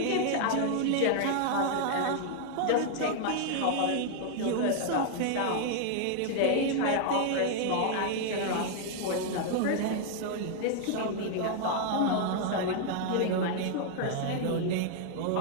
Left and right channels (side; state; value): both; different; correlation 0.00